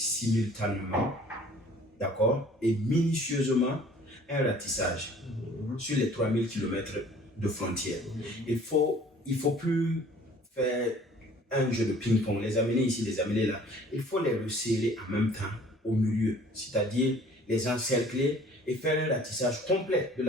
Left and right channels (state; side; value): normal; both; correlation 0.52